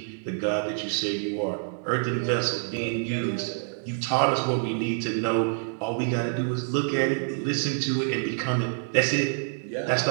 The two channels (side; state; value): left; silent; 60 dB below the other